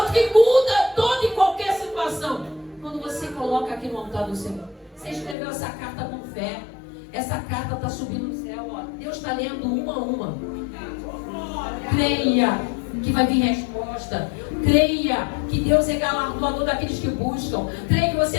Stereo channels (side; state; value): right; drops out; at 5.4 s